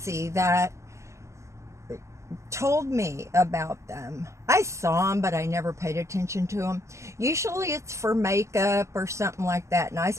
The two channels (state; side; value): late; left; 0.14 ms